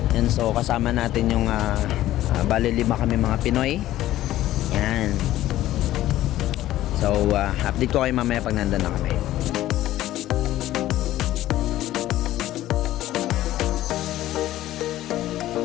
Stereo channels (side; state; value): right; quieter; 14.4 dB